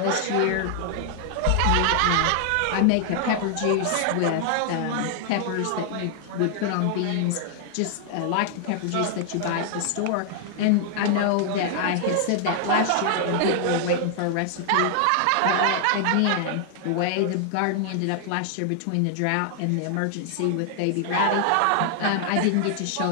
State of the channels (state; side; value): different; both; correlation 0.00